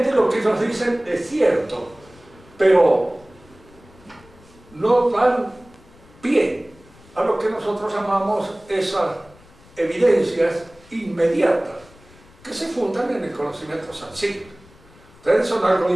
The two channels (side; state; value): left; noise; rumble, 26 dB below the sound